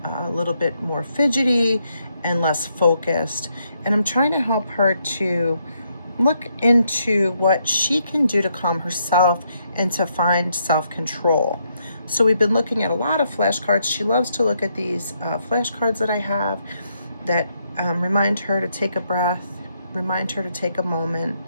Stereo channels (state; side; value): inverted; both; correlation -0.76